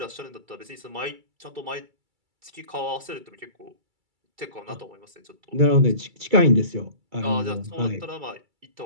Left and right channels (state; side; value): late; left; 2.3 ms